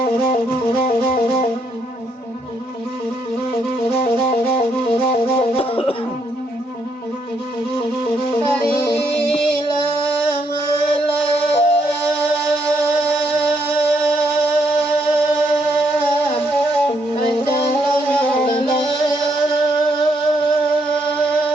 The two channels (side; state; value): both; normal; correlation 0.74